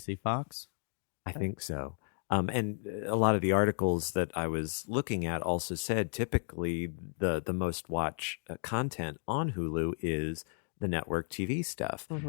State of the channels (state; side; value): silent; right; digital silence